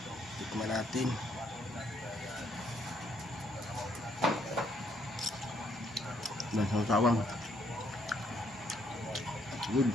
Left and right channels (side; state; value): both; normal; correlation 0.70